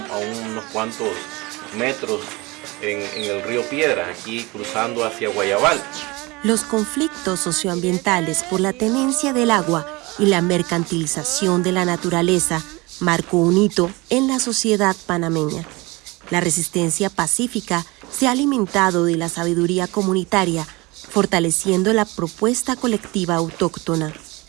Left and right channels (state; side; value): quieter; left; 23.9 dB